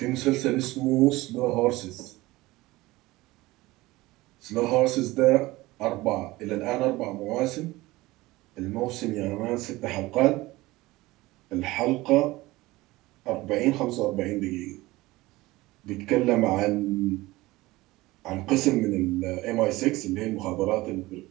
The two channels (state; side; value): quieter; left; 19.5 dB